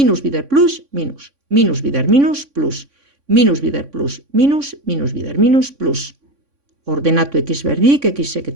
bider plus, minus bider minus, plus, minus bider plus, minus bider minus, plus. Ordenatu x berdik, xek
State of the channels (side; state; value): left; late; 3.6 ms